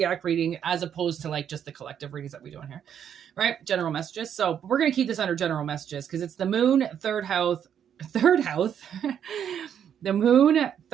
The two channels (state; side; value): quieter; left; 8.9 dB